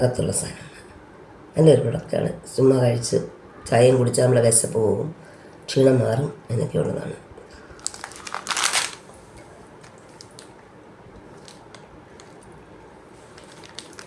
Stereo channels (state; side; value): identical; both; correlation 1.00